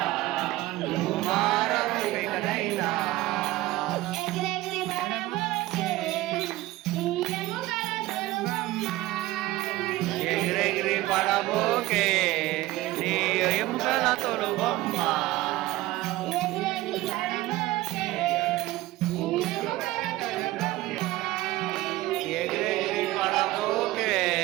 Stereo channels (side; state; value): left; quieter; 17.7 dB